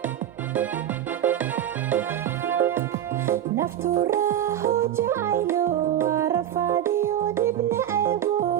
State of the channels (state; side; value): quieter; left; 10.8 dB